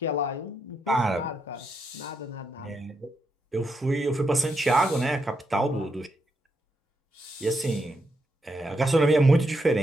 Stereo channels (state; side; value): normal; both; correlation 0.81